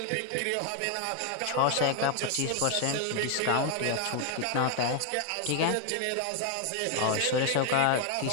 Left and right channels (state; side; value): different; both; correlation 0.00